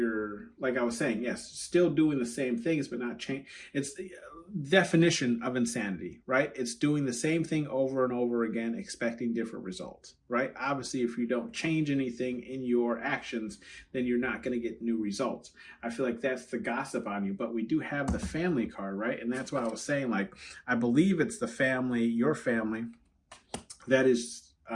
like I was saying, yes, still doing the same things, but not change. It's the definition of insanity, right? It's doing the same thing over and over again, expecting different results, right? Obviously, if you don't change anything in your actions, then you're not going to get new results. I feel like that's the gossip on you, but we do have the family card, right? And that's what I was saying. Like, I believe it's the family, your family, that is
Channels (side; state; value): both; identical; correlation 1.00